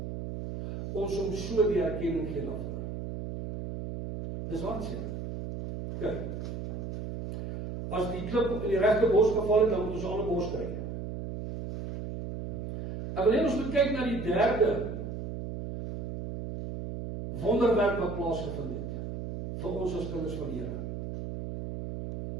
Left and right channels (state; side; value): noise; right; hum, 6 dB below the sound